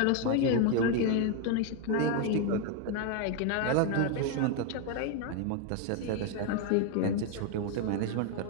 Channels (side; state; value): both; different; correlation 0.01